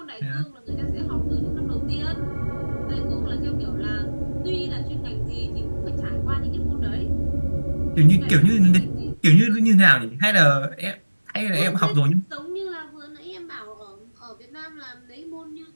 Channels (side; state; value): both; inverted; correlation -1.00